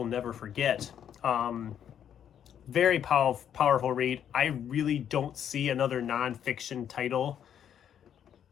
never forget. Very powerful read. I really don't see another nonfiction title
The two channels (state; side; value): quieter; right; 9.2 dB